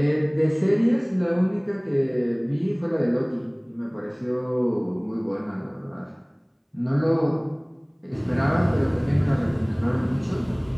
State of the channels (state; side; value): identical; both; correlation 1.00